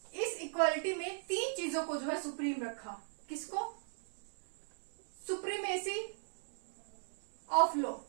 इस इक्वालिटी में 3 चीजों को जो है सुप्रीम रखा। किसको, सुप्रीमेसी ऑफ लॉ,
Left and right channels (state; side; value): silent; left; 53 dB below the other